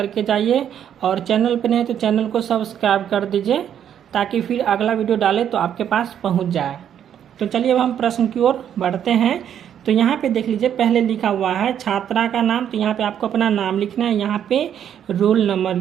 जाइए। और चैनल पर नहीं तो चैनल को सब्सक्राइब कर दीजिए ताकि फिर अगला वीडियो डाले तो आपके पास पहुंच जाए। तो चलिए अब हम प्रश्न की ओर बढ़ते हैं। तो यहाँ पे देख लीजिए, पहले लिखा हुआ है छात्रा का नाम। तो यहाँ पे आपको अपना नाम लिखना है, यहाँ पे रोल नंबर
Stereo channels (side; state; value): left; quieter; 9.4 dB